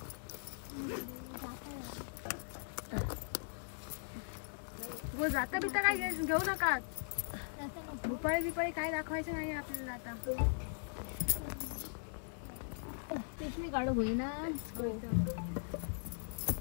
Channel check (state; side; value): silent; right; 51 dB below the other